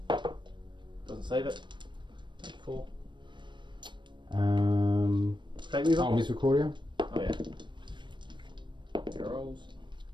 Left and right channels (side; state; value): left; late; 0.22 ms